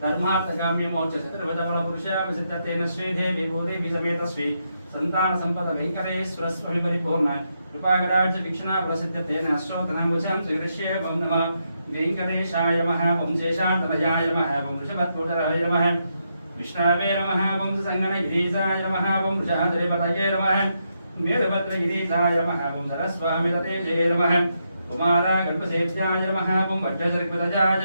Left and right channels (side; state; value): both; inverted; correlation -0.81